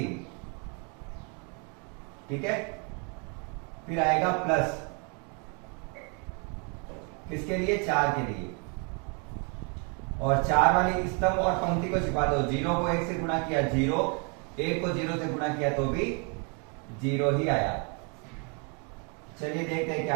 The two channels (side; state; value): left; quieter; 36.1 dB